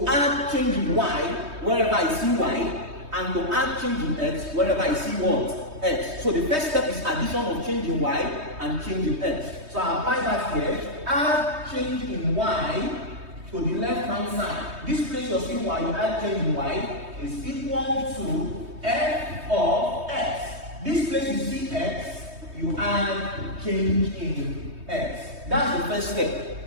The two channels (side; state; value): left; late; 3.2 ms